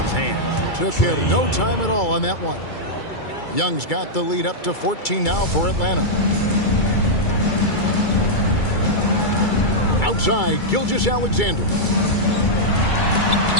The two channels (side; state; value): right; late; 2.3 ms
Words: hands. Took him no time at all on that one. Young's got the lead up to 14 now for Atlanta. Outside, Gilgeous-Alexander.